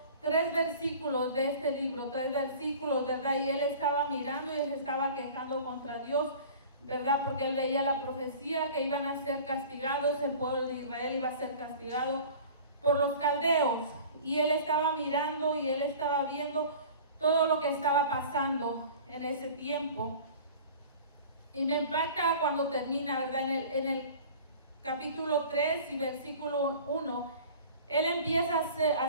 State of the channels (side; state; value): both; inverted; correlation -0.42